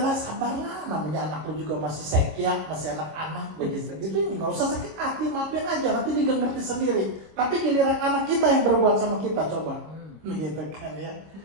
sabarlah, namanya anak lu juga masih sekia, masih anak-anak begitu gitu, nggak usah sakit hati, maafin aja, nanti dia ngerti sendiri. Tapi giliran anak kita yang berbuat sama kita, coba gitu kan ya.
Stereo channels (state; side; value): late; left; 26 ms